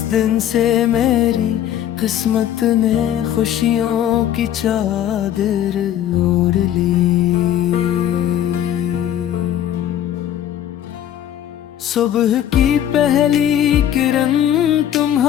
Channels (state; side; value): quieter; right; 10.9 dB